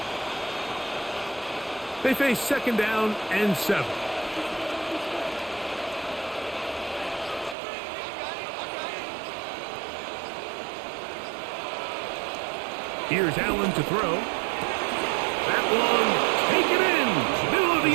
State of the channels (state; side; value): drops out; left; at 7.6 s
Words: They face 2nd down and 7. Here's Allen to throw. That one, take it in, middle of the